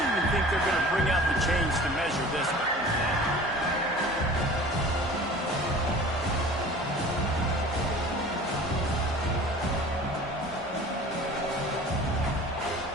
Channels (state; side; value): normal; both; correlation 0.43